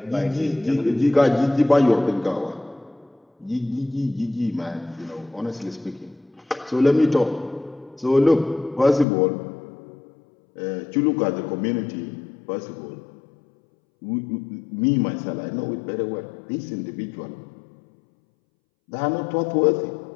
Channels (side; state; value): right; drops out; at 9.1 s